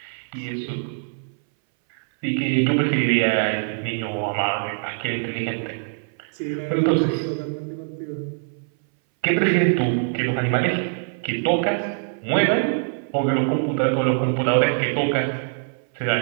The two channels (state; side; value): silent; left; 61 dB below the other